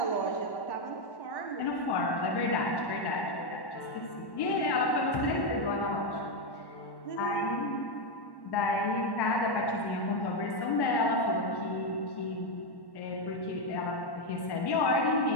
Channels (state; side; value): late; right; 1.1 ms